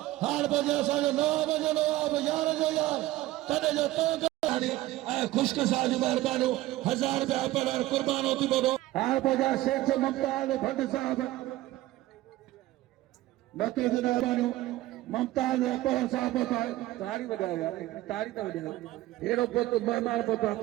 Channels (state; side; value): quieter; left; 16.5 dB